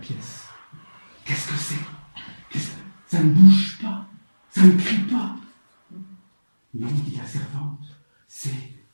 Qu'est-ce que c'est? Ça ne bouge pas, ça ne crie pas. Non, dit la servante, c'est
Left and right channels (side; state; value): both; inverted; correlation -1.00